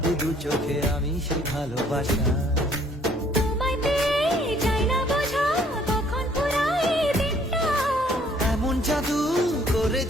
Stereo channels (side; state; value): both; normal; correlation 0.61